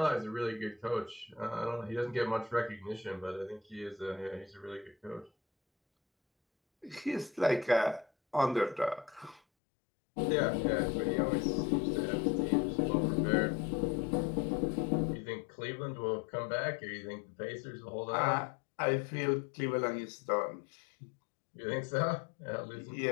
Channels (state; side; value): drops out; right; at 9.4 s